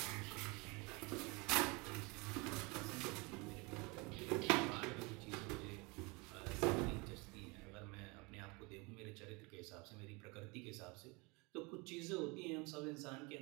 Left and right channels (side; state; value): left; quieter; 27.7 dB